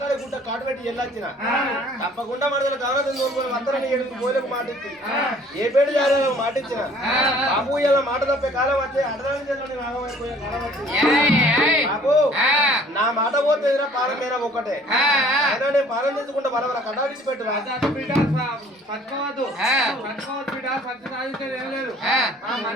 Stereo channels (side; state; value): both; normal; correlation 0.54